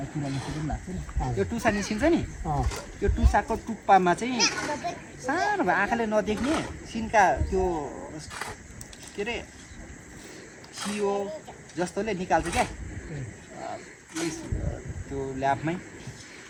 कुरा निस्किनु पनि लाग्छ नि। त्यो टुसा निस्किन्छ नि, त्यो टुसाको टुप्पामा चाहिँ सानो भए आँखाले नदेख्ने सिन्का त्यो के अरे सियो जस्तोले निकाल्छ क्या। त्यो ल्याबमै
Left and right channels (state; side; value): identical; both; correlation 1.00